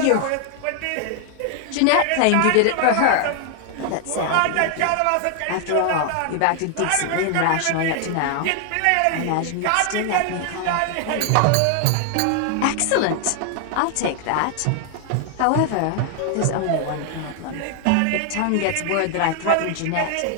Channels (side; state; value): both; different; correlation 0.00